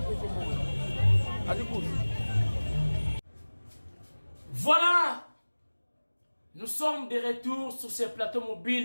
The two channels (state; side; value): inverted; both; correlation -1.00